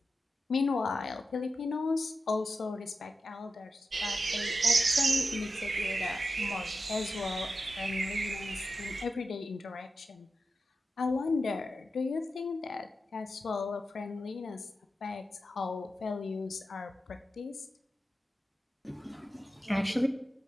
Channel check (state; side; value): normal; both; correlation 0.90